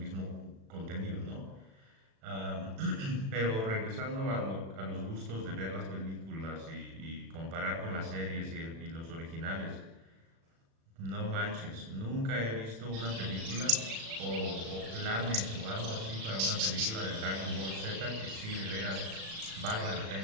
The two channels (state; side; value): late; left; 36 ms